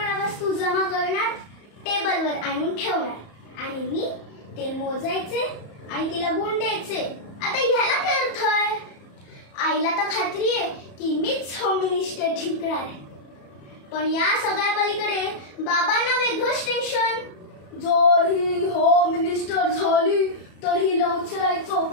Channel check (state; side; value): late; right; 34 ms